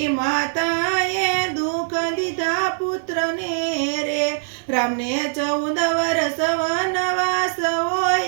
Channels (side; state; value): left; silent; 64 dB below the other